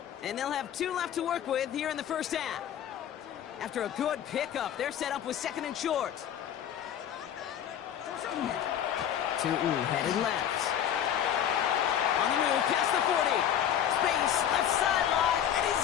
And they'll have 2 left to work with here in the first half. After a good pickup, they're set up with 2nd and short. Tootin headed left. On the move, past the 40. Space, left sideline, and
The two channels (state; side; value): quieter; right; 9.9 dB